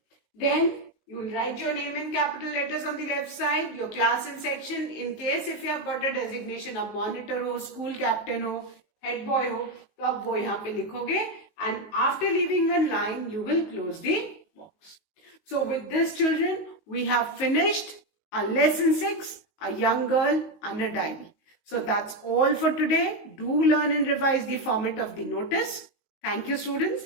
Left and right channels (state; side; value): late; right; 19 ms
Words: Then you will write your name in capital letters on the left side, your class and section. In case if you have got a designation of monitor हो, school captain हो, head boy हो, तो आप वो यहाँ पे लिखोगे. And after leaving one line, you will close the box. So with this, children, we have finished our lesson 6, a young girl and a diary. So that's all for today. Do learn and revise the format of the notice. Thank you, students.